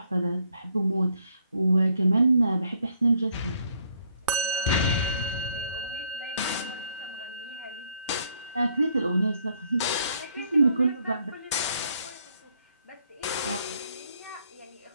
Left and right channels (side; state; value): both; inverted; correlation -0.68